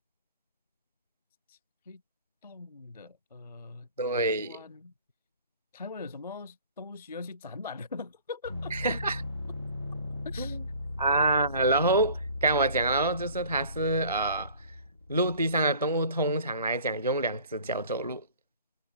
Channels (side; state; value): both; inverted; correlation -0.49